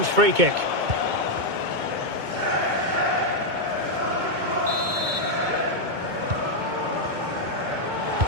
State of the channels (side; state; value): left; late; 2.2 ms